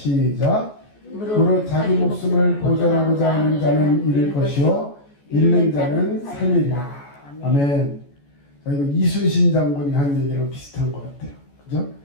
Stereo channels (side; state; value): right; late; 14 ms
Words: 무릇 자기 목숨을 보전하고자 하는 자는 잃을 것이요 잃는 자는 살리리라. 아멘. 자, 이거 이순신 장군이 한 얘기랑 비슷한 것 같아요. 그죠?